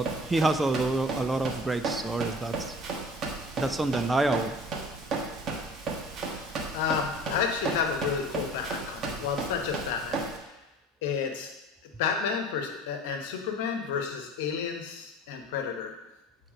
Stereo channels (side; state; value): both; normal; correlation 0.43